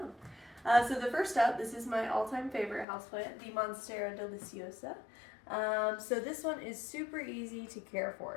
So the first up, this is my all-time favorite houseplant, the Monstera Deliciosa. So this one is super easy to care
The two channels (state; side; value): drops out; right; at 2.9 s